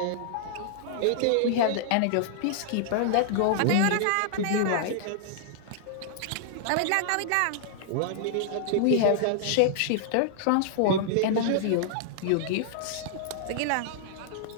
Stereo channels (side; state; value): both; different; correlation -0.01